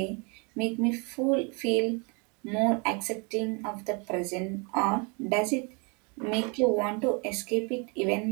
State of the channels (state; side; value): quieter; left; 32.9 dB